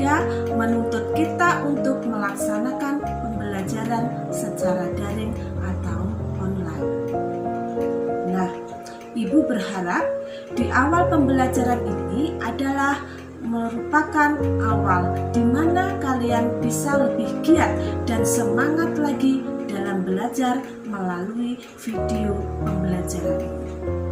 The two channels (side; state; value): both; identical; correlation 1.00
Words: menuntut kita untuk melaksanakan pembelajaran secara daring atau online. Nah, Ibu berharap di awal pembelajaran ini adalah merupakan awal di mana kalian bisa lebih giat dan semangat lagi dalam belajar melalui video pembelajaran ini.